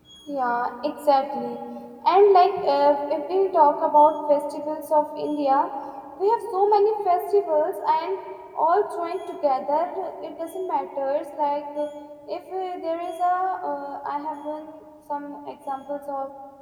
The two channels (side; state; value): both; identical; correlation 1.00